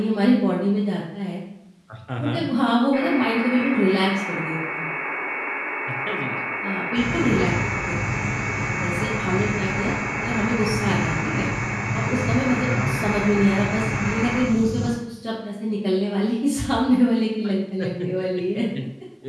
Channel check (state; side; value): identical; both; correlation 1.00